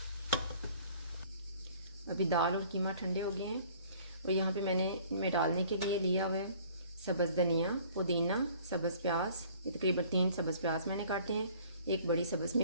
अभी दाल और कीमा ठंडे हो गए हैं और यहाँ पे मैंने इनमें डालने के लिए लिया हुआ है सब्ज़ धनिया, पुदीना, सब्ज़ प्याज। ये तकरीबन 3 सब्ज़ प्याज मैंने काटे हैं, 1 बड़ी सब्ज़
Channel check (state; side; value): inverted; both; correlation -0.53